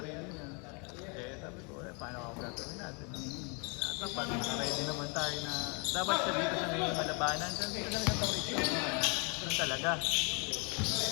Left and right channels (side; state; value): right; quieter; 34.5 dB